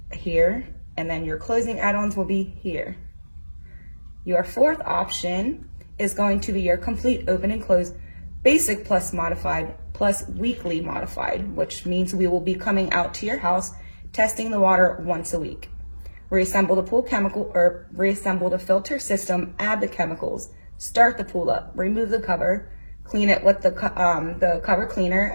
here, and then your closing add-ons will be here. Your fourth option is going to be your complete open and close basic plus modified plus weekly modified, which means we will be coming out to your house, testing the water once a week. Reassemble the pool chemical or reassemble the filter system, add the chemicals, start the pool up, remove the cover, clean it with the cover cleaner,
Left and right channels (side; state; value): both; inverted; correlation -1.00